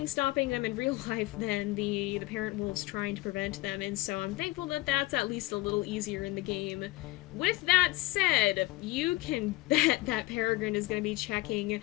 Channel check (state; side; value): quieter; right; 19.2 dB